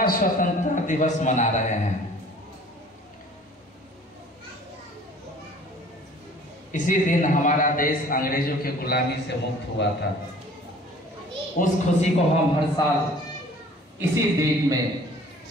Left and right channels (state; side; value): normal; both; correlation 0.50